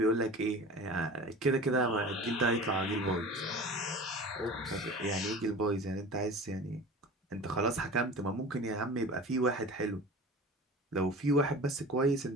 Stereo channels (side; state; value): both; normal; correlation 0.37